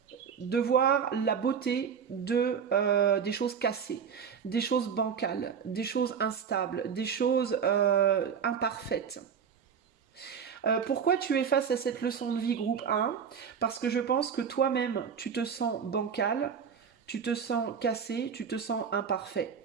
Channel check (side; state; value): left; quieter; 7.0 dB